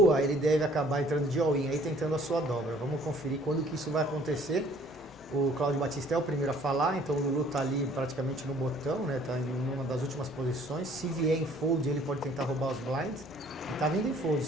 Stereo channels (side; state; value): both; normal; correlation 0.57